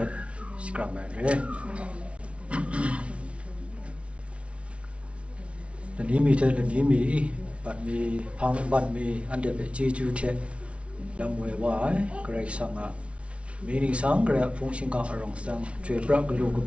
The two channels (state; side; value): late; left; 0.061 ms